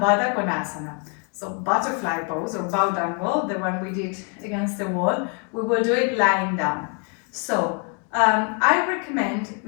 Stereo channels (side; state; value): right; quieter; 38.2 dB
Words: So butterfly pose or bow dangle, the one we did against the wall. We will do it lying down. So I recommend,